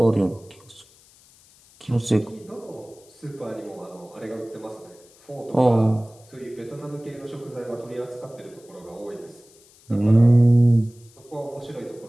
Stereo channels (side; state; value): left; noise; hiss, 27 dB below the sound